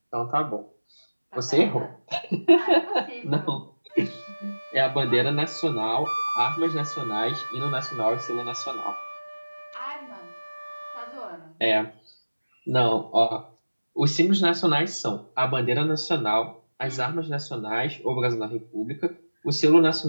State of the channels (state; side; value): inverted; both; correlation -1.00